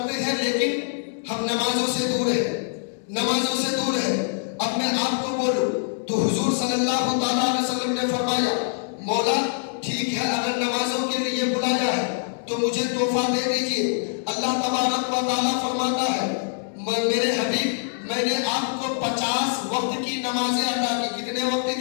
ہیں لیکن ہم نمازوں سے دور ہیں. اب میں آپ کو بولوں تو حضور صلی اللہ تعالیٰ علیہ وسلم نے فرمایا مولا ٹھیک ہے اگر نمازوں کے لیے بلایا ہے تو مجھے تحفہ دے دیجئے. اللہ تبارک و تعالیٰ فرماتا ہے میرے حبیب میں نے آپ کو 50 وقت کی نمازیں ادا کی. کتنے وقت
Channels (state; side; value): silent; right; 62 dB below the other